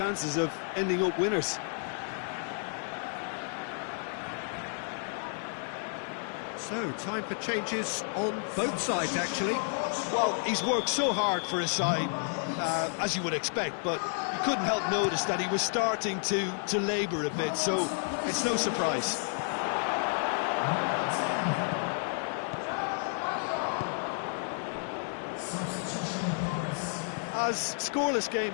of ending up winners. So, time for changes on both sides, actually. Well, he's worked so hard for his side, as you would expect, but you couldn't help notice that he was starting to labour a bit, so it's no surprise. As scoreless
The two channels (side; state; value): right; silent; 57 dB below the other